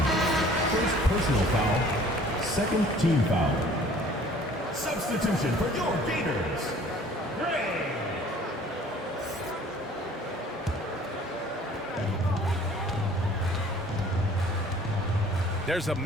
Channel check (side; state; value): both; normal; correlation 0.52